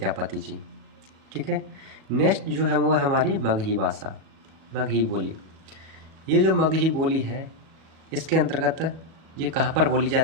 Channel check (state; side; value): late; left; 37 ms